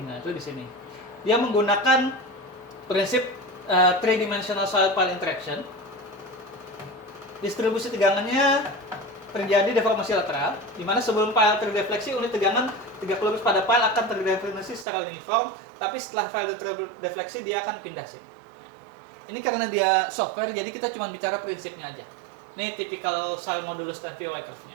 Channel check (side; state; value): left; drops out; at 14.9 s